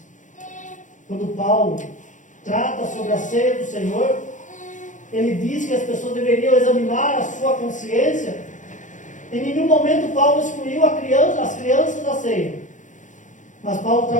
Quando Paulo trata sobre a ceia do Senhor, ele diz que as pessoas deveriam examinar a sua consciência. Em nenhum momento Paulo excluiu as crianças da ceia. Mas Paulo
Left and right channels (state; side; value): late; right; 0.37 ms